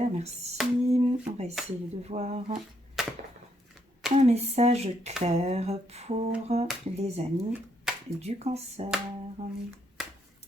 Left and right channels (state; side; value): normal; both; correlation 0.75